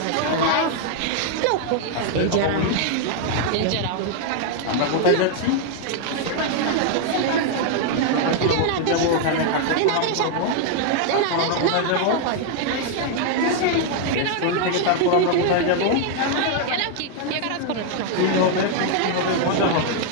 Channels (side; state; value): both; different; correlation 0.00